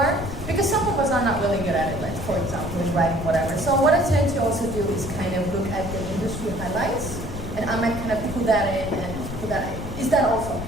Because some of us are not really good at it, like, for example, in writing, whatever. So what I tend to also do is kind of look at the industry highlights, and I might kind of put that in and put that in. Is that also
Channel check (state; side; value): noise; left; rumble, 9 dB below the sound